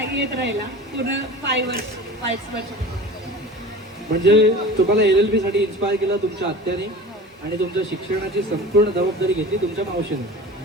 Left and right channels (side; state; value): both; normal; correlation 0.37